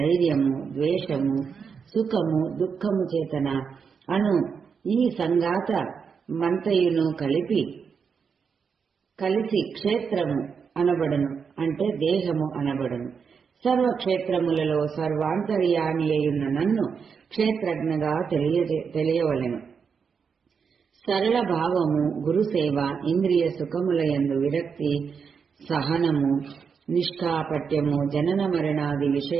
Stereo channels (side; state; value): left; quieter; 6.1 dB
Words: ద్వేషము, సుఖము, దుఃఖము చేతన అను ఈ సంగాత మంతయును కలిసి క్షేత్రము అనబడను, అంటే దేహము అనబడను. సర్వక్షేత్రములలో సర్వాంతర్యామి అయున్న నన్ను క్షేత్రజ్ఞగా తెలియవలెను. సరళ భావము, గురుసేవ, ఇంద్రియ సుఖములయందు విరక్తి, సహనము, నిష్కాపట్యము, జనన మరణాది